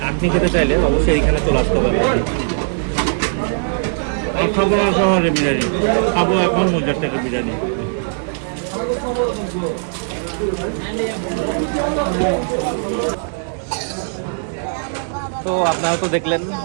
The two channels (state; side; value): silent; left; digital silence